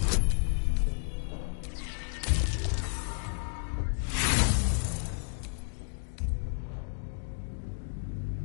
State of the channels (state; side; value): silent; right; digital silence